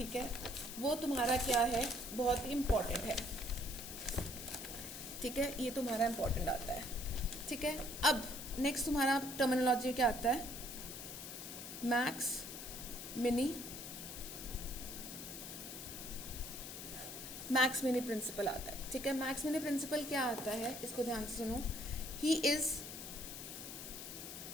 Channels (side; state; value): left; noise; hiss, 9 dB below the sound